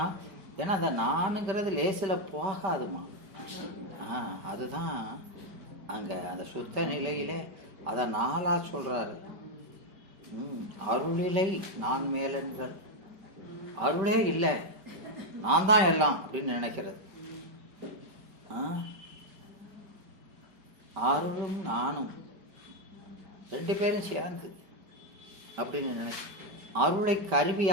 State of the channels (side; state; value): left; late; 5.2 ms